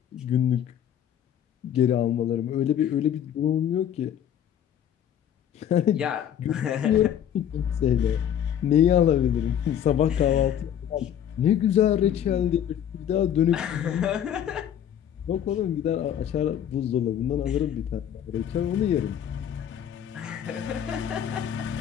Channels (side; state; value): right; quieter; 9.8 dB